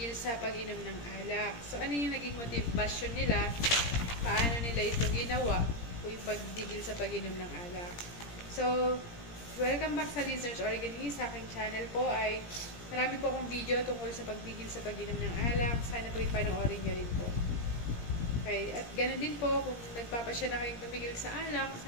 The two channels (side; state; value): right; late; 17 ms